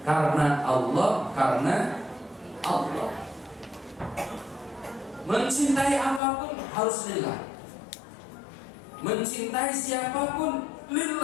Karena Allah, karena Allah. Mencintai apapun harus lillah. Mencintai siapapun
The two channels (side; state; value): right; drops out; at 6.2 s